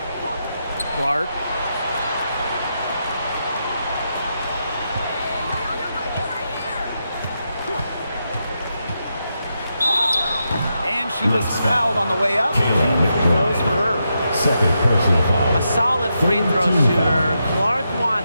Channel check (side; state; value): both; inverted; correlation -0.84